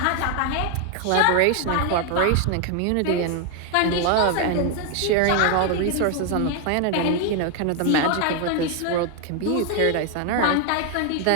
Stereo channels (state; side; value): different; both; correlation 0.01